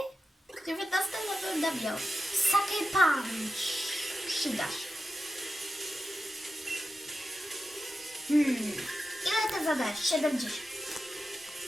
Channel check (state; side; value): normal; both; correlation 0.91